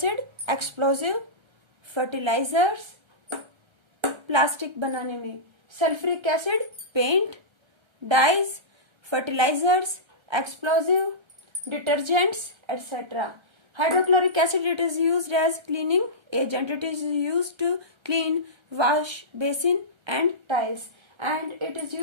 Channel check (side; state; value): left; late; 1.3 ms